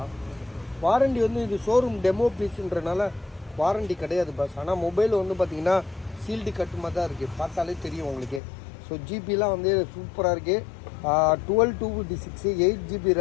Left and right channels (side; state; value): right; drops out; at 8.4 s